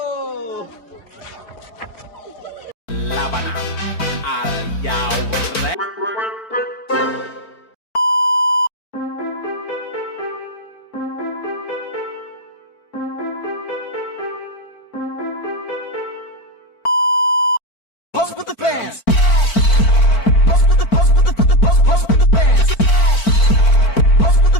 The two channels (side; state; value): right; late; 4.5 ms